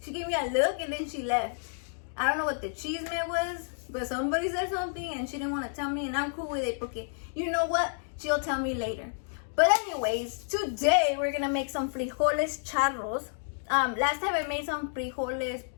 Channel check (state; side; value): silent; right; digital silence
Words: she gave me a look, and then she left. I don't know what the cheese meant was, but somebody said something and she didn't want to tell me, and I'm cool with it because you know what? She'll tell me later. But anyways, today we're gonna make some frijoles charros. Last time I made some frijoles